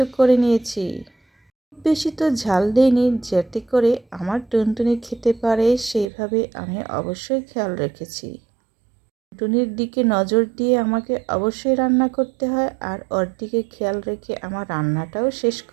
করে নিয়েছি। বেশি তো ঝাল দেইনি যাতে করে আমার টুনটুনি খেতে পারে, সেইভাবে আমি অবশ্যই খেয়াল রেখেছি। টুনটুনির দিকে নজর দিয়ে আমাকে অবশ্যই রান্না করতে হয় আর ওর দিকে খেয়াল রেখে আমার রান্নাটাও শেষ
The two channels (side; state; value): left; drops out; at 6.1 s